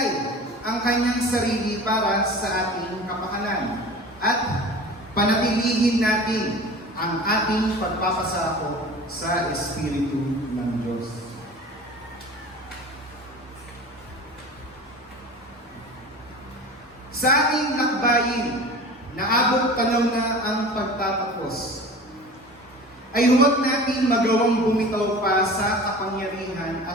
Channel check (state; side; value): normal; both; correlation 0.37